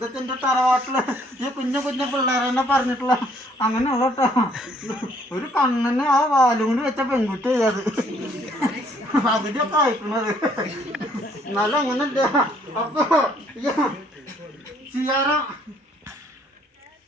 എൻ്റെ തറവാട്ടില് ഈ കുഞ്ഞു കുഞ്ഞു പിള്ളേരെന്നെ പറഞ്ഞിട്ടുള്ള അങ്ങനെയുള്ള കേട്ടോ. ഒരു കണ്ണിന് ആ വാലും കൊണ്ട് വെച്ച പെൺകുട്ടി അത് അതിലൊക്കെ അയക്കുന്നത്. എന്നാലും അങ്ങനല്ല. അപ്പൊ ചെയ്യാറ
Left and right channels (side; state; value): both; normal; correlation 0.64